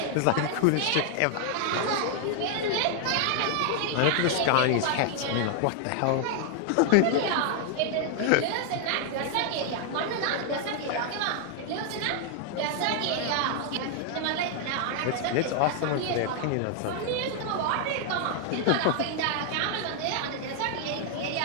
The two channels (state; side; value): different; both; correlation 0.00